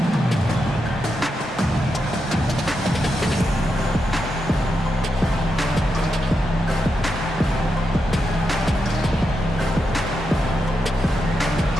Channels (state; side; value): normal; both; correlation 0.85